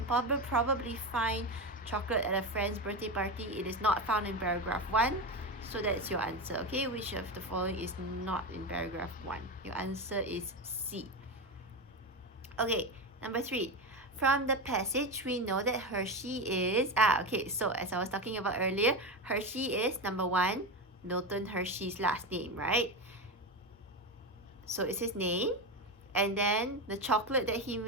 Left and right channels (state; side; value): normal; both; correlation 0.17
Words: probably find chocolate at a friend's birthday party, it is not found in paragraph 1. So that's your answer, okay? Which of the following is not in paragraph 1? Your answer is C. Okay, number 3. From the passage, we know that Hershey is... okay, so as I was talking about earlier, Hershey is, number 1, Milton Hershey's last name, right? So it's his name. And then the chocolate that he